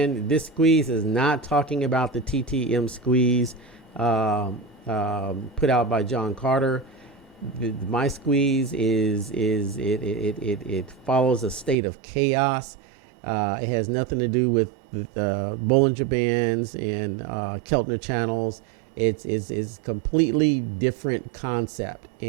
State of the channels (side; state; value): left; drops out; at 11.8 s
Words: this squeeze is not talking about the TTM squeeze put out by John Carter. My squeeze is it follows a state of chaos. It has nothing to do with the Bollinger Bands and Keltner channels. It's completely different concept,